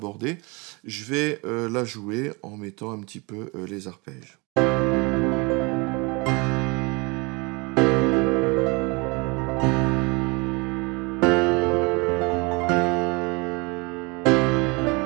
Je vais la jouer en mettant un petit peu les arpèges.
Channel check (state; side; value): quieter; left; 28.1 dB